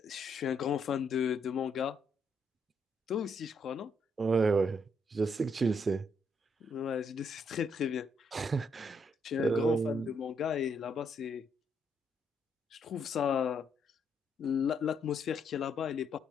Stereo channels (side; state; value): both; normal; correlation 0.74